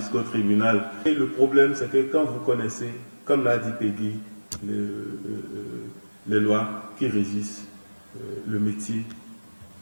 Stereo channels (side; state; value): both; inverted; correlation -1.00